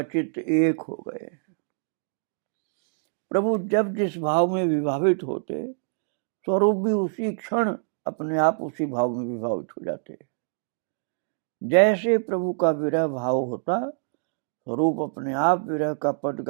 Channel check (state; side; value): silent; left; digital silence